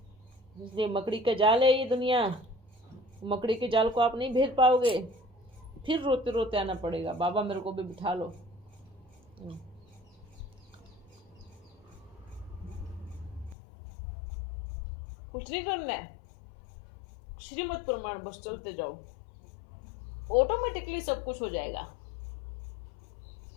इसलिए मकड़ी का जाल है ये दुनिया, मकड़ी के जाल को आप नहीं भेद पाओगे, फिर रोते रोते आना पड़ेगा, बाबा मेरे को भी बिठा लो। कुछ नहीं करना है, श्रीमत प्रमाण बस चलते जाओ, ऑटोमेटिकली सब कुछ हो जाएगा।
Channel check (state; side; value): drops out; right; at 13.6 s